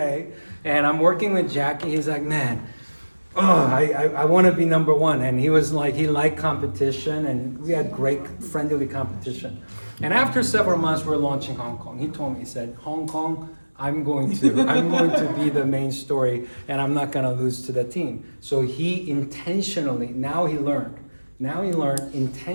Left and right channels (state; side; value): inverted; both; correlation -1.00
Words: And I'm working with Jackie. He's like, man, I want to be number one. And he was like, he liked competition, and we had great friendly competition. And after several months, we're launching Hong Kong. He told me, he said, Hong Kong, I'm going to be the main story, and I'm not going to lose to the team. So he intentionally, now he learned,